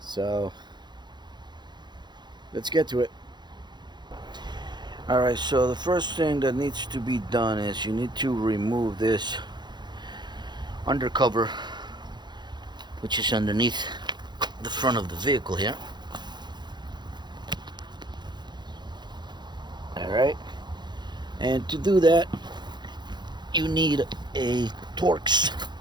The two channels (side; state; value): left; late; 0.21 ms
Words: So let's get to it. Alright, so the first thing that needs to be done is you need to remove this undercover, which is underneath the front of the vehicle here. Alright, and to do that you need a Torx